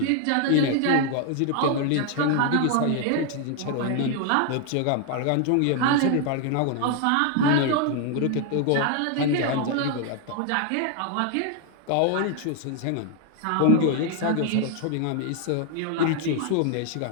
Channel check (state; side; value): different; both; correlation 0.00